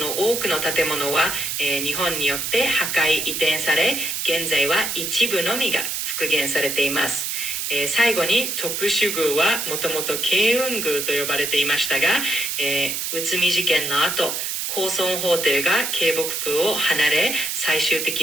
多くの建物は、日本によって破壊移転され、現在は一部のみが復元されています。最後に徳州宮はもともと慶雲宮と呼ばれていましたが、内海事件の後、高尊法廷が京北宮を離れ、最終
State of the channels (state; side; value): noise; right; hiss, 2 dB below the sound